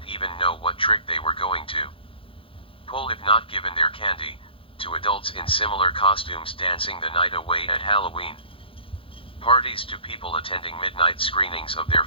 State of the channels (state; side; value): late; right; 0.26 ms